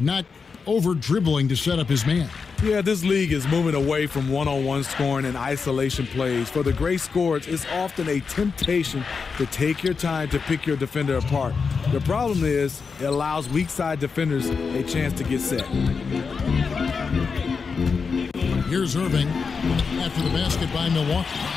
not over-dribbling to set up his man. Yeah, this league is moving away from one-on-one scoring and isolation plays. For the great scorers, it's often a temptation to take your time to pick your defender apart. The problem is it allows weak-side defenders a chance to get set. Here's Irving after the basket by Milwaukee.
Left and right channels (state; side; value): quieter; right; 5.3 dB